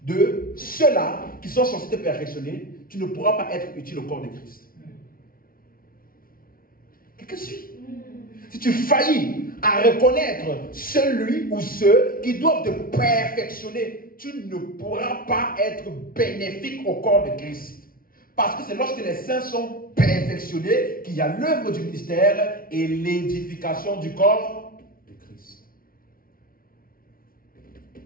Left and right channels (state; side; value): late; right; 0.42 ms